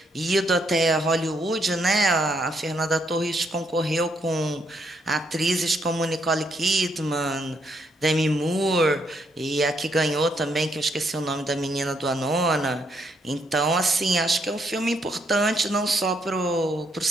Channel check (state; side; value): normal; both; correlation 0.74